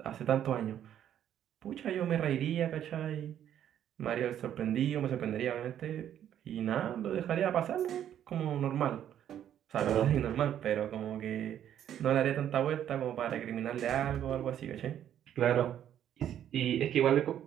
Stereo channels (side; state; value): left; quieter; 10.4 dB